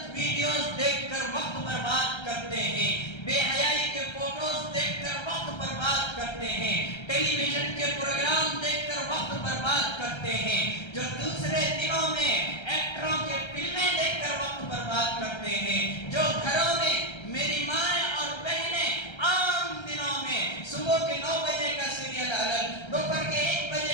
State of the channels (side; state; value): right; late; 1.3 ms